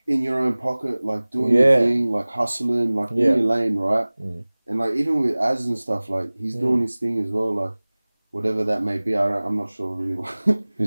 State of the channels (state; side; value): inverted; both; correlation -1.00